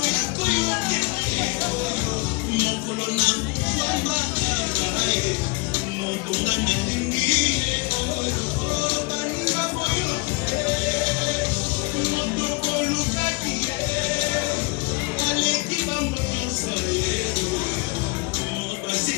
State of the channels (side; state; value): right; quieter; 28.6 dB